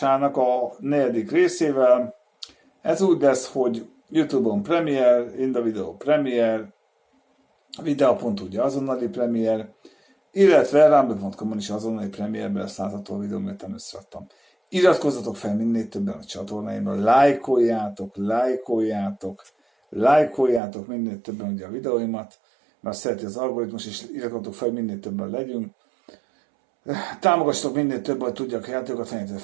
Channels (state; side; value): drops out; left; at 20.6 s